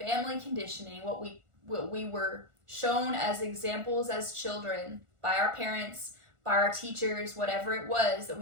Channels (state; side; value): late; left; 1.4 ms